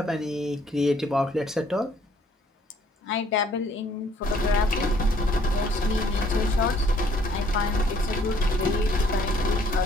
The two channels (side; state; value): both; normal; correlation 0.62